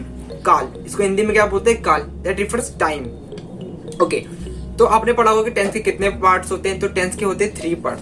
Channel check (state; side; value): identical; both; correlation 1.00